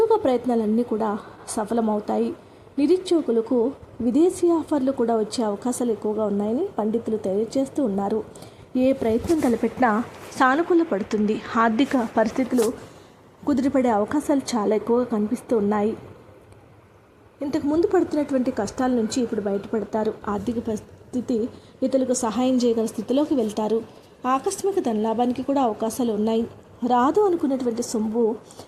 ప్రయత్నాలన్నీ కూడా సఫలమవుతాయి. నిరుద్యోగులకు విదేశీ ఆఫర్లు కూడా వచ్చే అవకాశాలు ఎక్కువగా ఉన్నాయని పండితులు తెలియజేస్తూ ఉన్నారు. ఏ ప్రయత్నం తలపెట్టినా సానుకూల పడుతుంది. ఆర్థిక పరిస్థితులు కుదిరిపడే అవకాశాలు చాలా ఎక్కువగా కనిపిస్తూ ఉన్నాయి. ఇంతకు ముందు పడుతున్నటువంటి కష్టాల నుంచి ఇప్పుడు బయటపడతారు. ఆర్థిక పరిస్థితి ఇతరులకు సహాయం చేయగల స్థితిలోకి వెళ్తారు. ఆకస్మిక ధనలాభానికి కూడా అవకాశాలు ఉన్నాయి. రాదు అనుకున్నటువంటి సొమ్ము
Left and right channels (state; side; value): identical; both; correlation 1.00